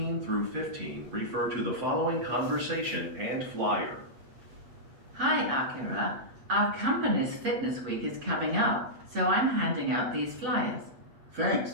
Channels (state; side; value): late; left; 7.9 ms